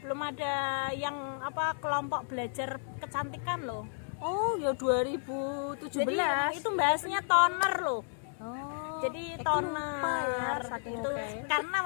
belum ada yang kelompok belajar kecantikan loh. Oh, ya 2017. Jadi itu bahasnya toner loh. Oh, Jadi lupa toner ya, saking itu oke. karena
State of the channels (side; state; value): right; silent; 56 dB below the other